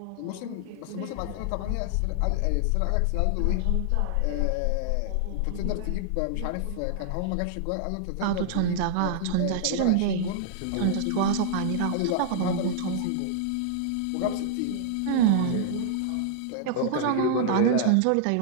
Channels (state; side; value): different; both; correlation -0.01